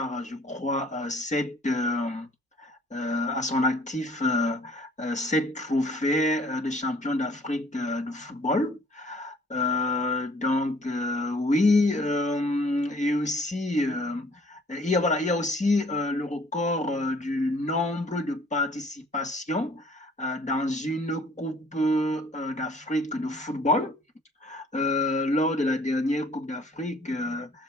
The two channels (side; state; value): both; normal; correlation 0.57